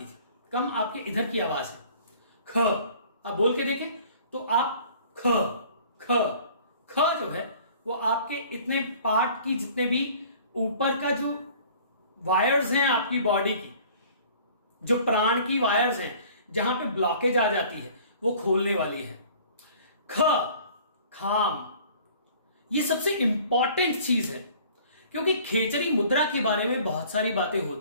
थी। कम आपके इधर की आवाज है ख। आप बोल के देखें तो आप ख ख ख जो है वो आपके इतने पार्ट की जितने भी ऊपर का जो वायर्स हैं आपकी बॉडी की, जो प्राण की वायर्स हैं, जहां पे ब्लॉकेज आ जाती है वो खोलने वाली है। ख खाम, ये सबसे इंपॉर्टेंट चीज है क्योंकि खेचरी मुद्रा के बारे में बहुत सारी बातें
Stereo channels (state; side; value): inverted; both; correlation -0.50